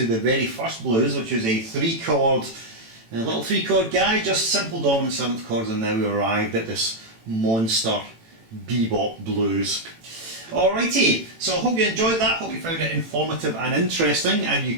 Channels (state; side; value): late; left; 18 ms